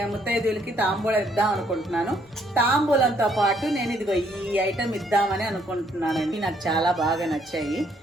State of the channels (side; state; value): both; normal; correlation 0.68